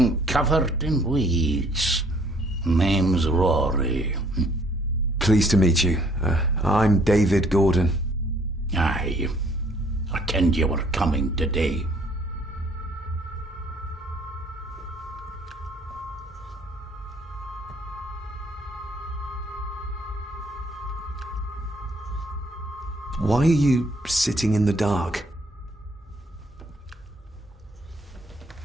covered in weeds. Name's Rory. Pleased to meet you. I'm David Gordon. Aye. I kenned you were coming today. Why are you sitting in the dark?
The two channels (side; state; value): both; normal; correlation 0.61